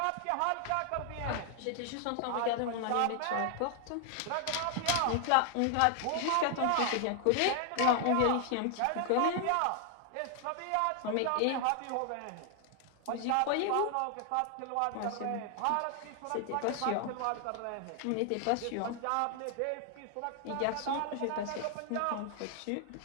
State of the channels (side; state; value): both; different; correlation 0.00